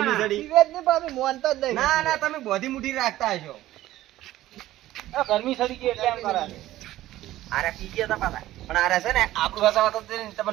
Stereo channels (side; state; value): left; quieter; 15.0 dB